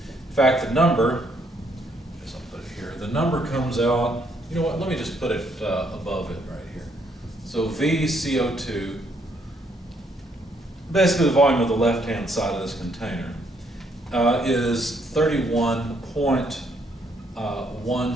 fact, the number, I guess I'll put it here, the number comes out, you know what, let me just put it above it right here. So VCO2, basically the volume of the left-hand side of this container, is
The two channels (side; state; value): both; normal; correlation 0.71